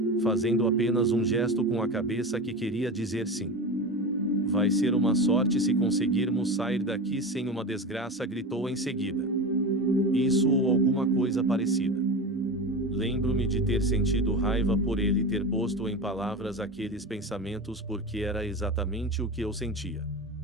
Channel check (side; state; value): both; normal; correlation 0.25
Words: Fazendo apenas um gesto com a cabeça que queria dizer sim. Vai ser uma sorte se conseguirmos sair daqui sem uma desgraça, gritou em seguida. Isso ou alguma coisa parecida. Lembro-me de ter sentido raiva por ele ter posto em palavras aqueles pensamentos, porque era exatamente o que eu sentia.